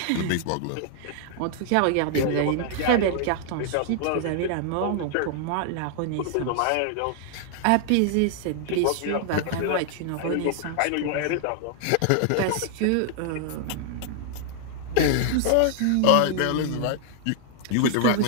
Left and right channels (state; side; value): different; both; correlation 0.00